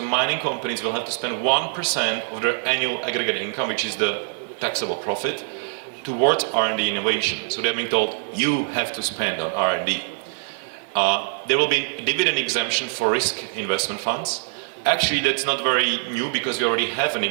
mining companies will have to spend 1% of their annual aggregate income, which is the taxable profit, towards R&D innovation. So they're being told, you have to spend on R&D. There will be dividend exemption for risk investment funds. Actually, that's not very new because we already have an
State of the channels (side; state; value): left; silent; digital silence